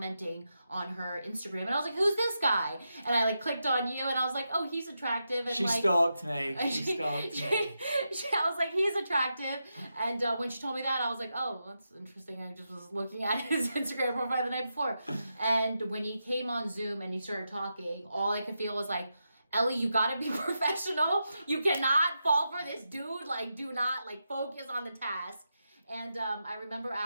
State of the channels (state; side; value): inverted; both; correlation -0.87